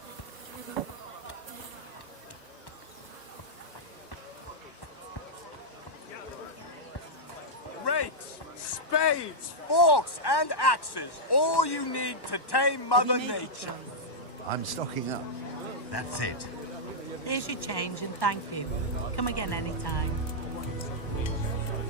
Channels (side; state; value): right; late; 1.1 ms